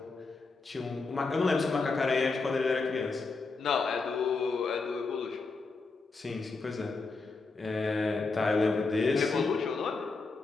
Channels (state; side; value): quieter; right; 4.0 dB